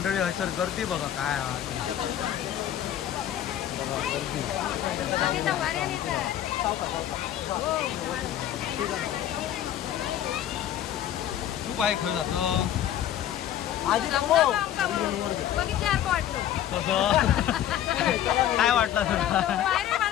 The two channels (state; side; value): quieter; right; 11.3 dB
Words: हसर गर्दी बघा काय आहे. बघा गर्दी. तू बाय खरं जातो बघितल्यासारखं वाटलं. कसं काय वाटलं तुला? पायऱ्या